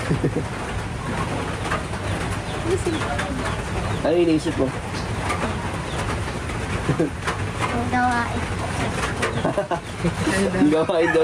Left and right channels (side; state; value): both; identical; correlation 1.00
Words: Ano iniisip mo? Ang gawain. Ang gawain